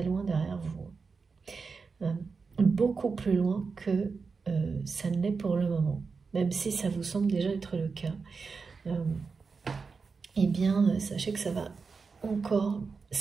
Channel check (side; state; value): left; quieter; 4.8 dB